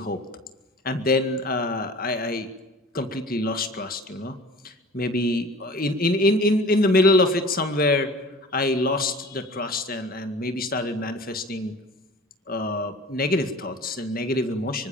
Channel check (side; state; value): both; normal; correlation 0.42